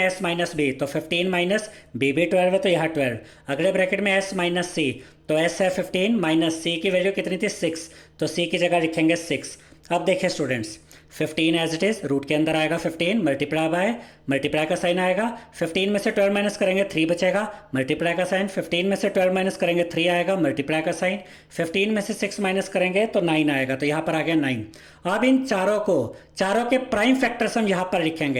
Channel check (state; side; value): identical; both; correlation 1.00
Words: s माइनस b तो 15 माइनस b भी 12 है तो यहाँ 12। अगले ब्रैकेट में s माइनस c तो s है 15 माइनस c की वैल्यू कितनी थी 6, तो c की जगह लिखेंगे 6। अब देखिए students, 15 as it is, root के अंदर आएगा 15, मल्टीप्लाई बाय, मल्टीप्लाई का साइन आएगा, 15 में से 12 माइनस करेंगे 3 बचेगा, मल्टीप्लाई का साइन, 15 में से 12 माइनस करेंगे 3 आएगा, मल्टीप्लाई का साइन, 15 में से 6 माइनस करेंगे तो 9 आएगा, तो यहाँ पर आ गया 9। अब इन चारों के प्राइम फैक्टर्स हम यहाँ पर